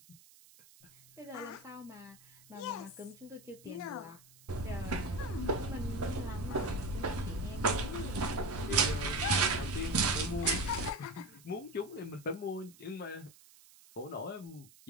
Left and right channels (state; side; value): noise; right; hiss, 24 dB below the sound